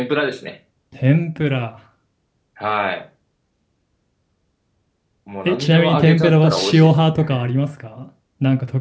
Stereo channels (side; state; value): both; identical; correlation 1.00